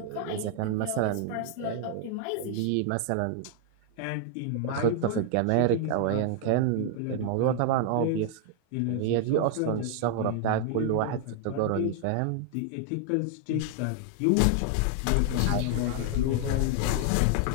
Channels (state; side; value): different; both; correlation 0.00